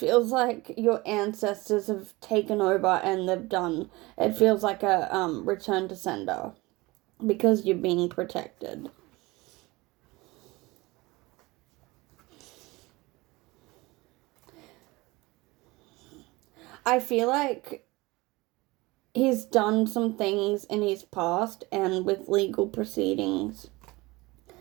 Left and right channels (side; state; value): left; quieter; 22.1 dB